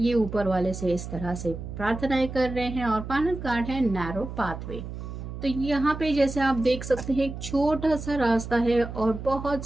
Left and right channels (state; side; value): noise; right; hum, 9 dB below the sound